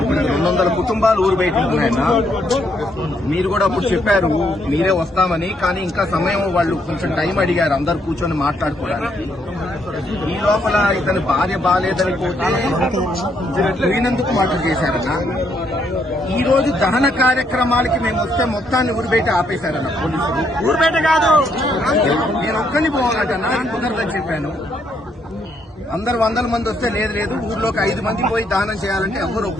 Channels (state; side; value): normal; both; correlation 0.73